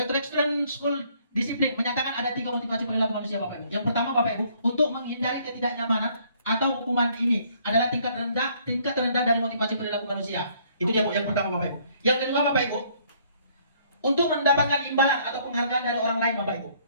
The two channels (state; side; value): inverted; both; correlation -0.64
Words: School Disiplin menyatakan ada 3 motivasi perilaku manusia Bapak Ibu. Yang pertama Bapak Ibu, untuk menghindari ketidaknyamanan atau hukuman ini adalah tingkat terendah dari motivasi perilaku manusia. Itu dia yang pertama Bapak Ibu. Yang kedua Bapak Ibu, untuk mendapatkan imbalan atau penghargaan dari orang lain Bapak Ibu.